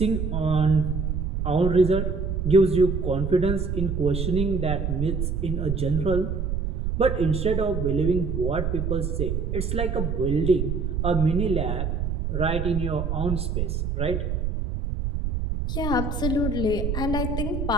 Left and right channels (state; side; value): noise; right; rumble, 1 dB below the sound